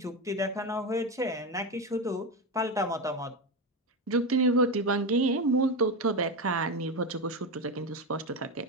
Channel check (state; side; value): normal; both; correlation 0.15